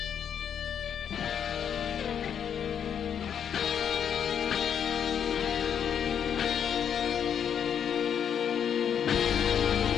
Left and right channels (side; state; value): right; quieter; 8.3 dB